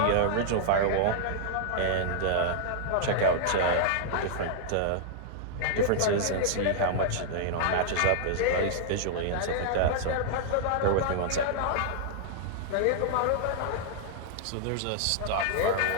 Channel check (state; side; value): different; both; correlation -0.01